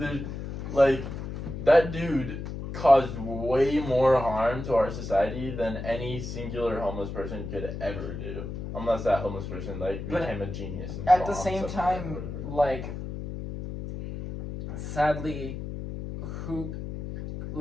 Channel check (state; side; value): noise; left; hum, 7 dB below the sound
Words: Like, that dude caused way more harm to our society than any singular homeless person could ever do. Unless that homeless person, like, But became a genius and At the bombed same something or time, whatever. like, sadly,